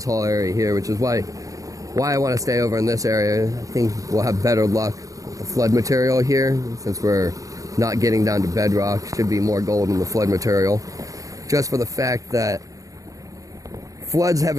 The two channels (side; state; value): left; late; 0.16 ms